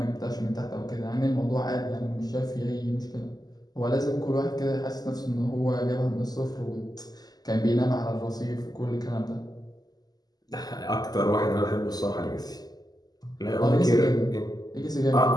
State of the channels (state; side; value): late; right; 0.19 ms